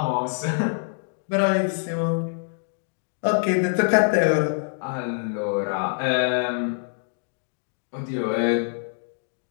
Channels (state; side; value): silent; right; digital silence